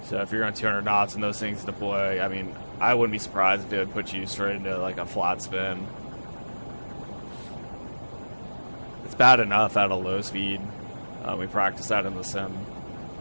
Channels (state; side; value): inverted; both; correlation -1.00